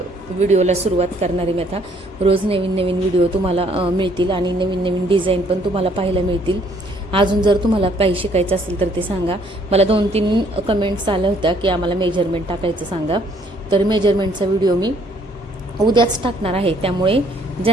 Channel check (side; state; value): both; normal; correlation 0.64